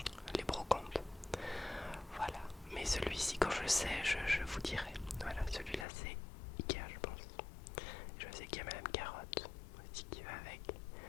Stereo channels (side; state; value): right; drops out; at 5.9 s